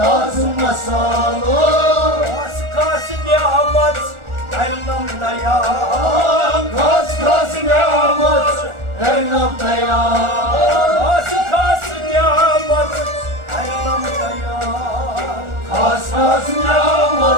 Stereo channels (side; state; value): left; late; 1.4 ms